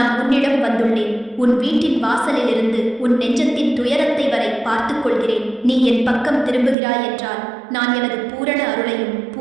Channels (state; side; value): drops out; left; at 6.8 s